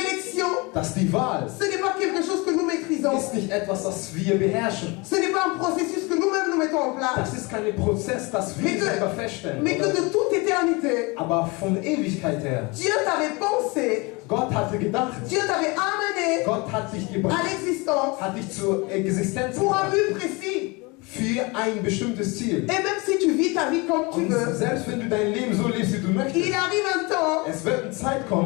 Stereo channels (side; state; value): right; quieter; 26.8 dB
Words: dass die Wahl ce n'est pas quelque chose que nous maîtrisons. ist nicht etwas, das wir beherrschen. Ce n'est pas un processus que nous-mêmes nous mettons en place. Das ist kein Prozess, das wir selber feststellen. Mais que Oder? de toute éternité, Aber von Ewigkeit her, Dieu t'avait pensé, Gott hatte gedacht, Dieu t'avait amené Gott hat dich à gebracht, l'existence hat dich zur Existenz pour un gebracht, but précis. für ein bestimmtes Ziel. Et même si tu vis ta vie comme tu Und veux, selbst wenn du dein Leben so lebst, wie du möchtest, il arrive un temps es wird eine Zeit